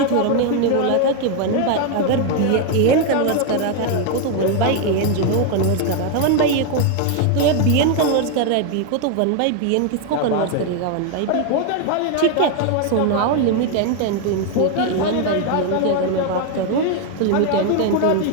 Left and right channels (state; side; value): different; both; correlation 0.01